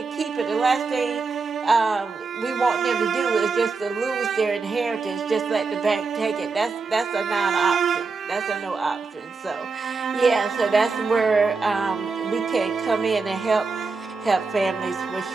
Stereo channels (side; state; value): left; quieter; 4.4 dB